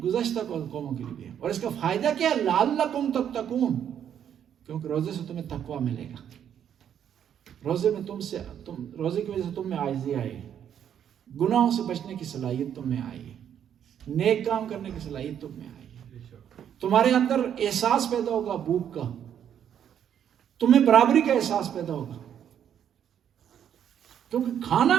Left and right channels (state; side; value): quieter; left; 9.3 dB